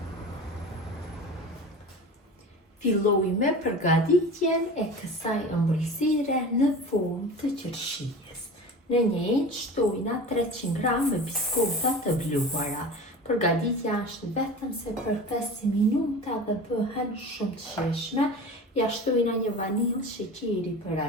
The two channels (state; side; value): normal; both; correlation 0.34